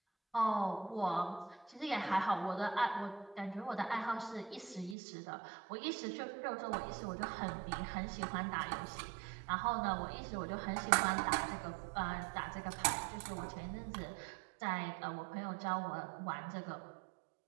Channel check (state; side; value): drops out; left; at 5.0 s